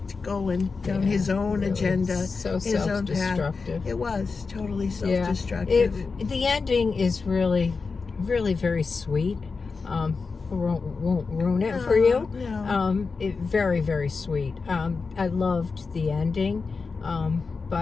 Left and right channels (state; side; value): quieter; right; 4.6 dB